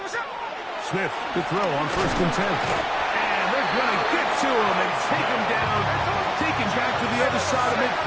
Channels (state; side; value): identical; both; correlation 1.00